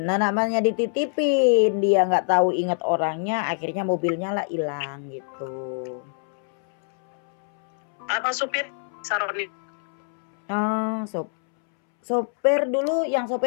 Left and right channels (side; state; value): right; silent; 62 dB below the other